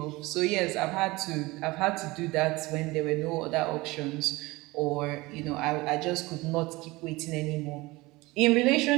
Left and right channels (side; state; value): left; quieter; 21.6 dB